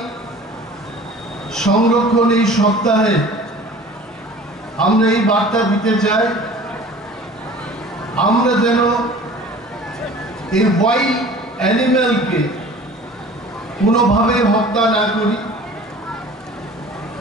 সংরক্ষণ এই সপ্তাহে আমরা এই বার্তা দিতে চাই আমরা যেন এই ওয়াইল্ড অ্যানিম্যালকে কোনোভাবে হত্যা না করি।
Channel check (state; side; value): normal; both; correlation 0.44